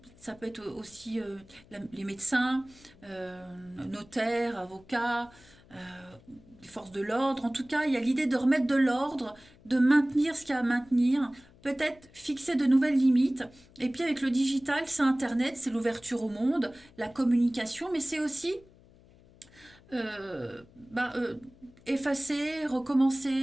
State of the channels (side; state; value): left; noise; hum, 26 dB below the sound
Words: ça peut être aussi les médecins, notaires, avocats, les forces de l'ordre. En tout cas, il y a l'idée de remettre de l'ordre, de maintenir ce qu'il y a à maintenir, peut-être fixer de nouvelles limites. Et puis avec le digital, c'est Internet, c'est l'ouverture au monde, la communication, mais c'est aussi euh, bah, euh, effacer,